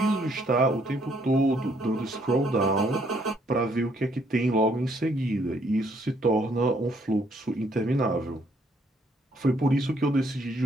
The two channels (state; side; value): normal; both; correlation 0.68